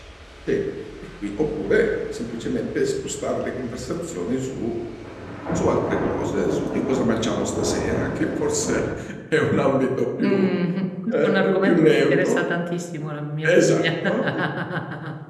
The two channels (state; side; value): identical; both; correlation 1.00